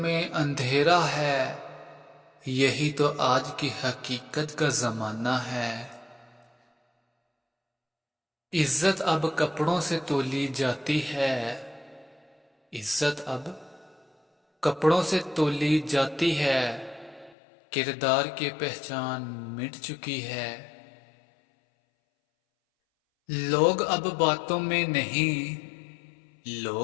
अंधेरा है। यही तो आज की हकीकत का जमाना है। इज्जत अब कपड़ों से तोली जाती है। इज्जत अब कपड़ों से तोली जाती है। किरदार की पहचान मिट चुकी है। लोग अब बातों में नहीं,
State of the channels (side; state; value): right; drops out; at 17.4 s